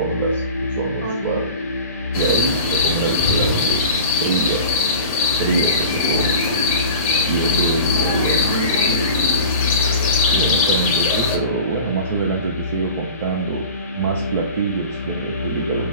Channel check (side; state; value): both; inverted; correlation -0.37